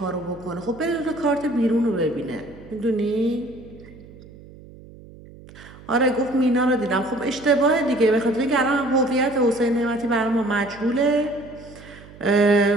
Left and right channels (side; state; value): right; noise; hum, 20 dB below the sound